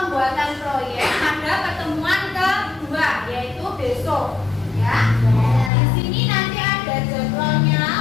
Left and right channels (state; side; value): drops out; right; at 5.7 s